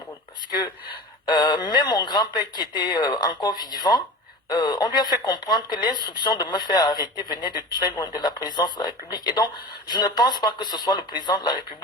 Parce que même mon grand-père qui était encore vivant, on lui a fait comprendre que l'instruction de me faire arrêter venait de très loin de la présidence de la République. Et donc, je ne pense pas que ce soit le président de la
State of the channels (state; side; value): normal; both; correlation 0.34